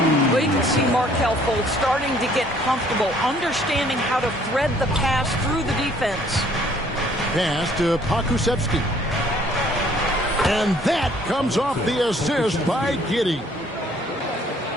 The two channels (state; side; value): normal; both; correlation 0.60